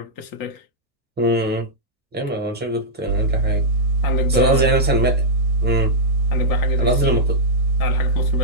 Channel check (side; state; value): both; normal; correlation -0.08